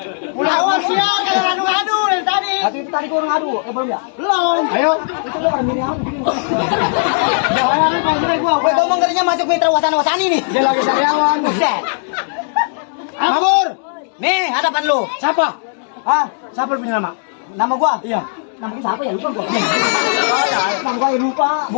Awas sial kalau ngadu dari tadi. Itu tadi gua ngadu. Belum ya? Belum. Ayo. Itu lu orang minimal begini. Bayaran paling gede gua. Gue ngomong ngerinya masuk mitra wasana-wasani nih. Dia lagi sariawan. Buset. Mabur. Nih, hadapan lu. Siapa? Hah? Siapa lu punya nama? Nama gua? Iya. Nama gua siapa ya? Lupa gua. Nama gua lupa.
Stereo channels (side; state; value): right; silent; digital silence